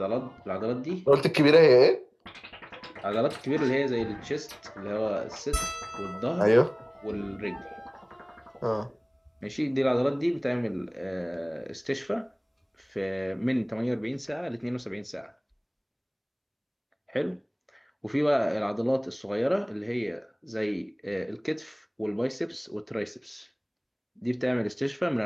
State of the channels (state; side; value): identical; both; correlation 1.00